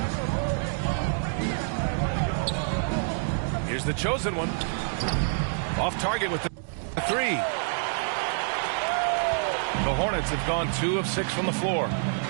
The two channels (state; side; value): silent; left; digital silence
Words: Here's the chosen one. Off target with the 3. The Hornets have gone 2 of 6 from the floor.